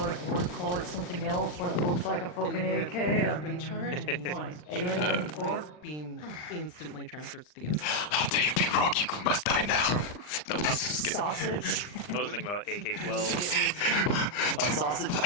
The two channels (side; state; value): right; late; 40 ms